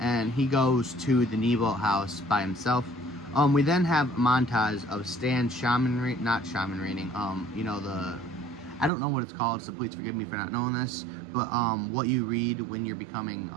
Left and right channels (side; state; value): left; drops out; at 8.9 s